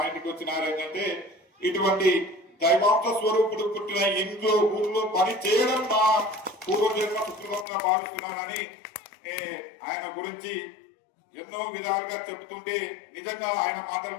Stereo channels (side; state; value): right; drops out; at 7.7 s